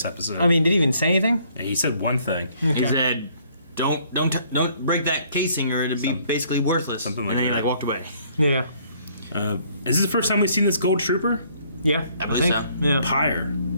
episode. I mean, did he even say anything? Yeah, he said one thing. Okay. He said, "Don't break that casing, or it'll be basically worthless." Something like and then that. he walked away. Yeah. Is this the first time we've seen this gold trooper? Yeah. I believe so. Yeah. Pyre.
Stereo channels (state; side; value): inverted; both; correlation -0.63